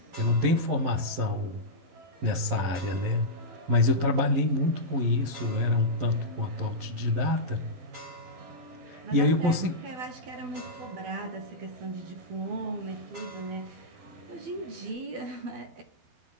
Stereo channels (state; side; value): late; left; 11 ms